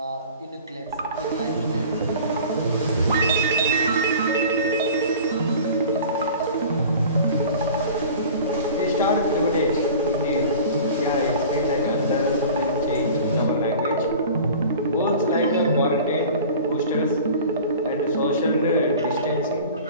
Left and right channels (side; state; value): both; inverted; correlation -0.42